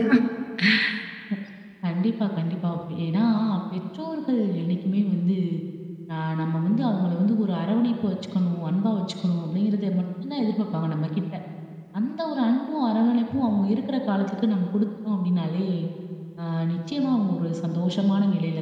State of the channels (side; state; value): both; identical; correlation 1.00